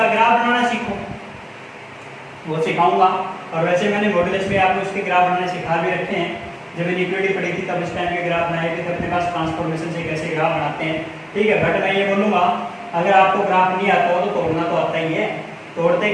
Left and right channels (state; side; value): identical; both; correlation 1.00